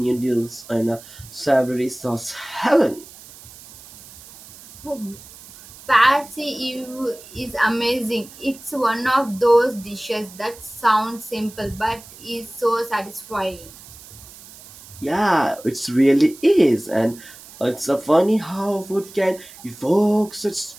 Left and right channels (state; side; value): noise; right; hiss, 19 dB below the sound